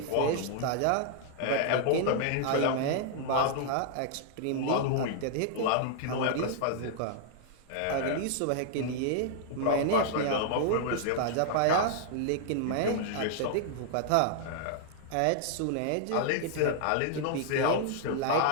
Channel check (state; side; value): different; both; correlation -0.01